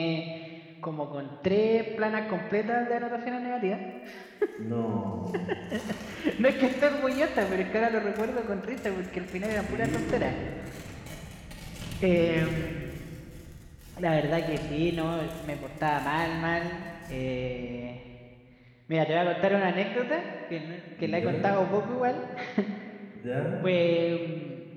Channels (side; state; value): both; identical; correlation 1.00